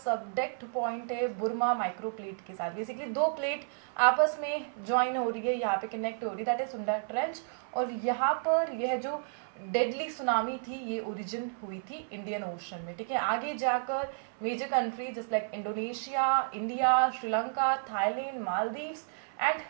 पॉइंट है बुर्मा माइक्रो प्लेट के साथ. बेसिकली 2 प्लेट आपस में ज्वाइन हो रही है, यहाँ पे कनेक्ट हो रही है, दैट इज सुंडा ट्रेंच. और यहाँ पर यह जो डेडली सुनामी थी ये ओरिजिन हुई थी इंडियन ओशन में, ठीक है. आगे जाकर major countries just like Indonesia, India, Sri Lanka, Thailand, Maldives and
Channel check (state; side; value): silent; left; 57 dB below the other